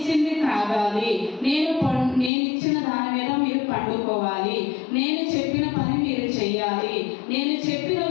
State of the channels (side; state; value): right; drops out; at 2.3 s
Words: తాగాలి, నేను ఇచ్చిన దాని మీద మీరు పండుకోవాలి, నేను చెప్పిన పని మీరు చెయ్యాలి, నేను చెప్పిన